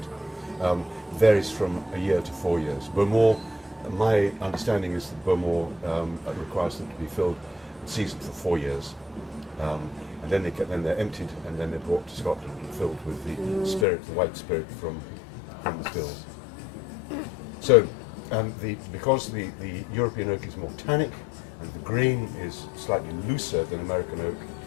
Varies from a year to 4 years. Beaumont, my understanding is that Beaumont requires them to be filled and seasoned for 4 years. And then they're emptied, and then they're brought to Scotland and filled with the spirit, the white spirit from the stills. So, because the European oak is more tannic and the grain is slightly looser than American oak,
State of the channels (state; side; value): drops out; right; at 13.9 s